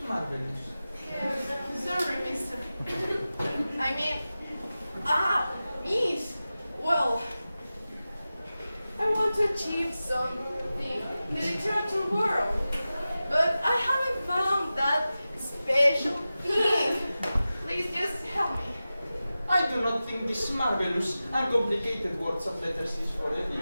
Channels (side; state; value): both; inverted; correlation -0.95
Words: marvelous. Sorry, mister. I mean, miss. Well, I want to achieve something in the literature world, but I haven't found that special thing. Please just help me. I do not think this marvelous and complicated words of letters is for